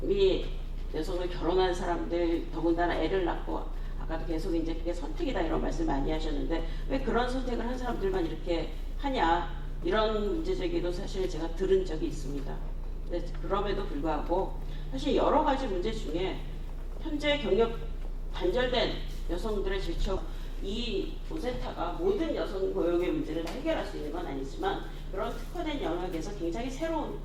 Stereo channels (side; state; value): both; identical; correlation 1.00